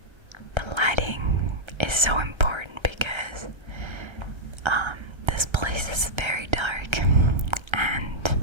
the lighting is so important because this place is very dark, and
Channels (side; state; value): left; late; 1.3 ms